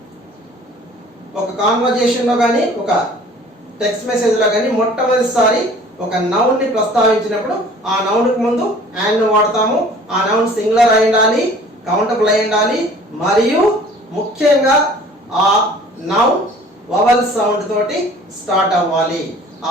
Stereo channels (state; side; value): normal; both; correlation 0.49